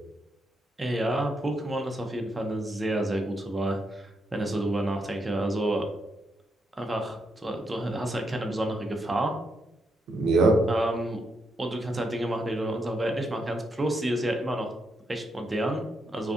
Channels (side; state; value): both; normal; correlation 0.80